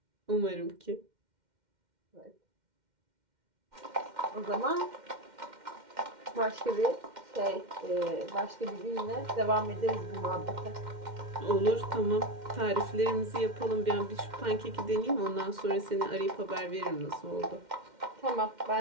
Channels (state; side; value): late; left; 2.1 ms